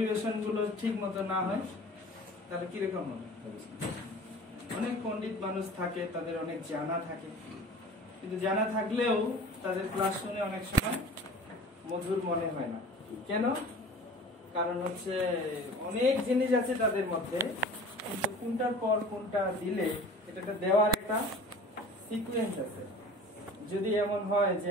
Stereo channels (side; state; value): both; normal; correlation 0.42